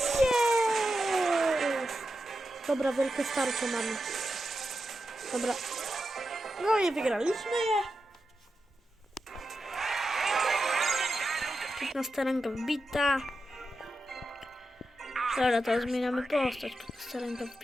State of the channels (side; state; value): both; normal; correlation 0.89